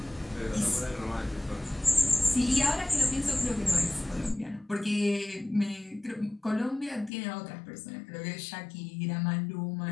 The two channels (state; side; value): drops out; right; at 7.1 s